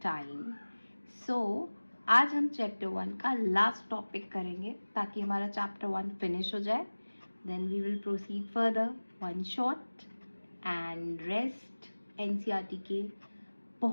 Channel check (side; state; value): both; inverted; correlation -1.00